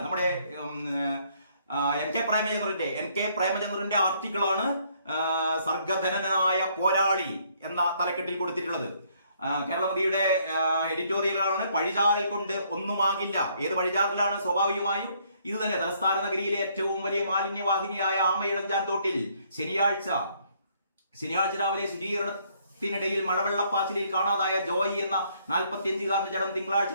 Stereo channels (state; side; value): inverted; both; correlation -0.67